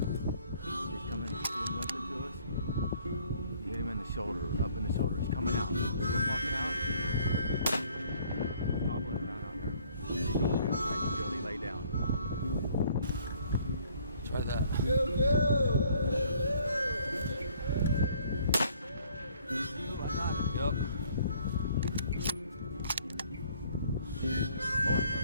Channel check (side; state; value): both; inverted; correlation -0.60